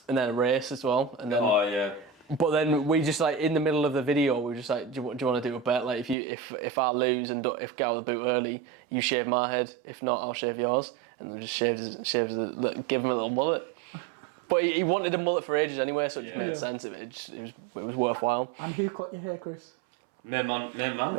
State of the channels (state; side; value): drops out; left; at 6.2 s